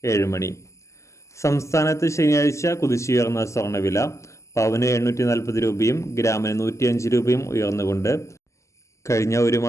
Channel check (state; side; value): late; right; 0.14 ms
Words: 7 മണി. സംസ്ഥാനത്ത് ശനിയാഴ്ച കുതിച്ചുയർന്ന സ്വർണ്ണവില പവന് 840 രൂപയും ഗ്രാമിന് 105 രൂപയും ഉയർന്നുകൊണ്ട് കഴിഞ്ഞ ഒരു